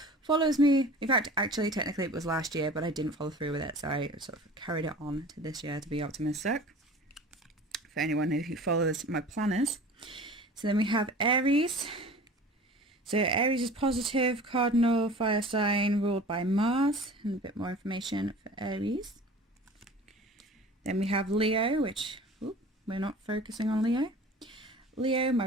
follows me. In fact, actually technically it was last year, but I didn't follow through with it, so I sort of carried it on to this year to be optimistic, for anyone who follows my planners. So then we have Aries. So Aries is positive, cardinal fire sign ruled by Mars, and a bit more information for Aries. Then we have Leo, which we're not focusing on Leo. Leo,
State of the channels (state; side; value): normal; both; correlation 0.41